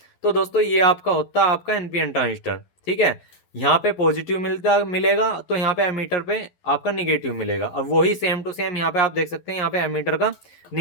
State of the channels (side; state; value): right; late; 12 ms